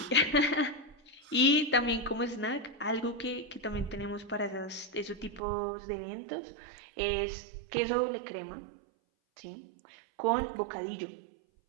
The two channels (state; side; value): drops out; left; at 5.4 s